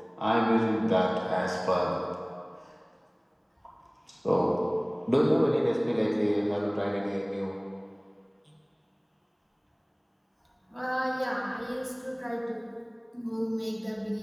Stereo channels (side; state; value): both; identical; correlation 1.00